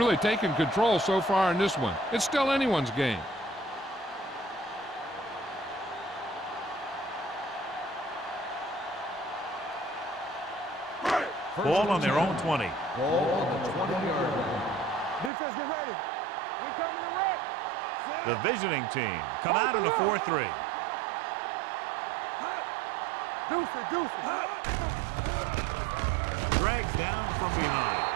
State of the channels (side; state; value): left; drops out; at 15.3 s